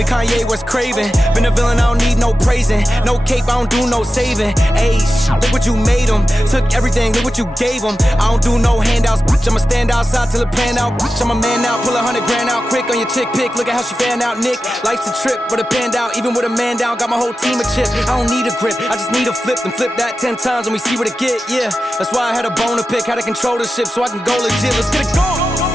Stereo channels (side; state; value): both; normal; correlation 0.93